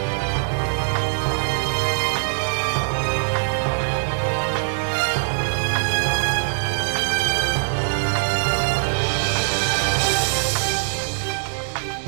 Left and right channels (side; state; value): left; silent; digital silence